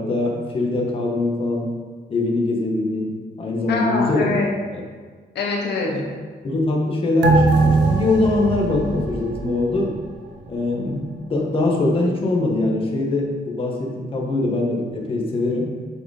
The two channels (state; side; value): normal; both; correlation 0.68